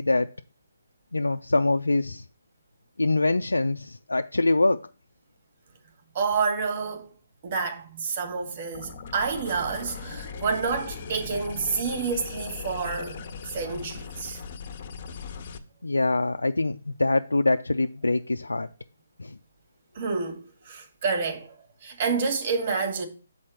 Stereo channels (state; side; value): inverted; both; correlation -0.80